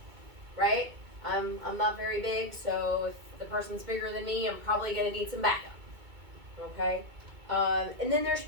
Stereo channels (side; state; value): left; late; 2.2 ms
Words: right? I'm not very big, so if the person's bigger than me, I'm probably going to need some backup, okay? And then there's